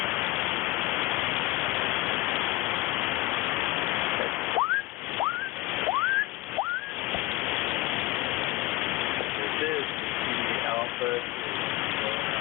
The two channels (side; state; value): right; quieter; 19.4 dB